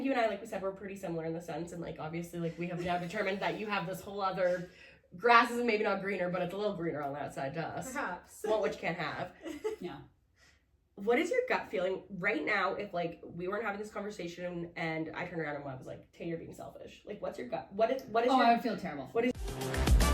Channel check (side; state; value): both; identical; correlation 1.00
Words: you and I, like we said, we're pretty similar in the sense, and like obviously like we have now determined that you have this whole other, grass is maybe not greener, but it's a little greener on that side to us. Perhaps. Well, which you can't have. Yeah. What is your gut feeling right now if like we weren't having this conversation and I turned around and I was like, Tay, you're being selfish. Like what's your gut? What is Oh, your... I would feel terrible. What is...